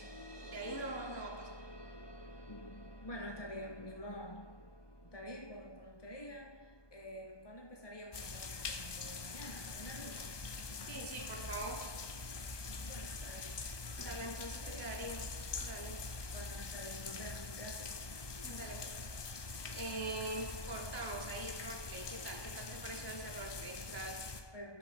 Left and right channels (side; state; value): right; late; 1.2 ms